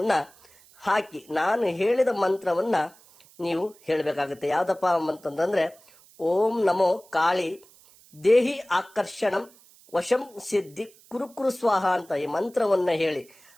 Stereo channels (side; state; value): right; noise; hiss, 27 dB below the sound